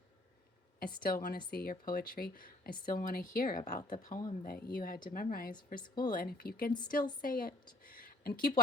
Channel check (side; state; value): both; normal; correlation 0.56